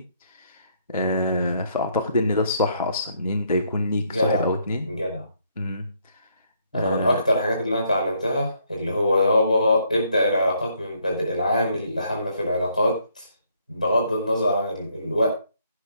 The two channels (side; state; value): both; inverted; correlation -0.71